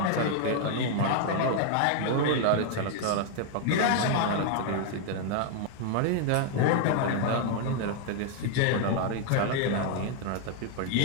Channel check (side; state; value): both; different; correlation 0.00